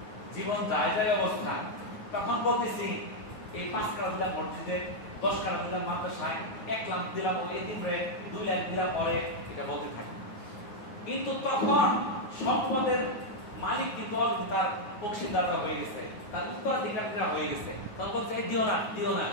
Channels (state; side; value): late; right; 9.4 ms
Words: জীবন যায় যায় অবস্থা, তখন বলতেছি এই 5 টাকা দিলাম মসজিদে, 10 টাকা দিলাম মাদ্রাসায়, 1 লাখ দিলাম ওই এতিমরে, 2 লাখ দিলাম পরে, এটা বলতে থাকি। কিন্তু তখন সম্পদের মালিক কিন্তু তার অংশীদাররা হয়ে গেছে, তার উত্তরাধিকারীরা হয়ে গেছে, তখন বলছে দিও না, দিও না,